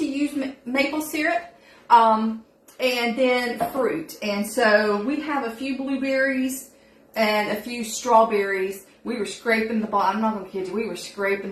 use maple syrup and then fruit. And so we have a few blueberries and a few strawberries. We were scraping the bottom, I'm not going to kid you, we were scraping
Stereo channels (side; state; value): both; identical; correlation 1.00